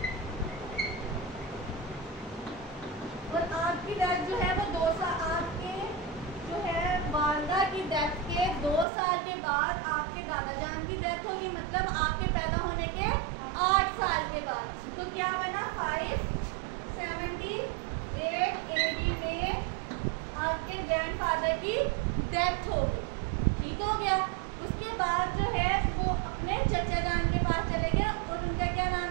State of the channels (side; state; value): left; drops out; at 8.8 s